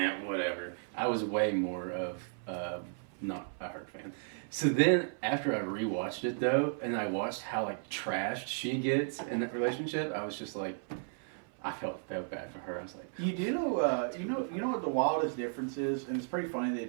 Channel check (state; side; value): silent; left; 55 dB below the other